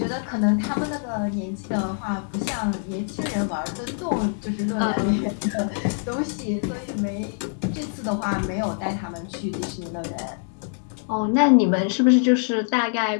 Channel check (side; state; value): right; silent; 62 dB below the other